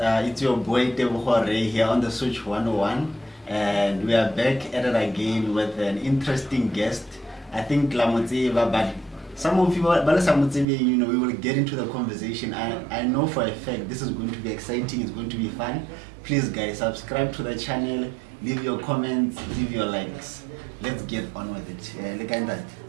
your boy Tebogo Ray here on the Switch 101, and we are back at it again with an interesting guest. I think Lamotseva, but some of you, you know, we will get into the conversation. I know for a fact this is going to be exciting, it's going to be fun. Please guys, subscribe to the channel, leave your comments, leave your likes. Let's get on with it. Look at that.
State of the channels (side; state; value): left; drops out; at 10.7 s